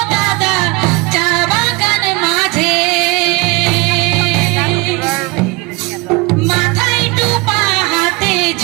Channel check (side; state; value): left; quieter; 25.6 dB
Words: দাদা চা বাগান মাঝে মাথায় টোপা হাতে